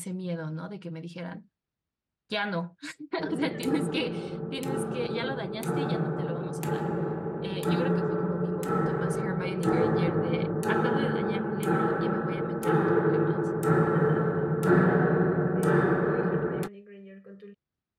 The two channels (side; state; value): both; identical; correlation 1.00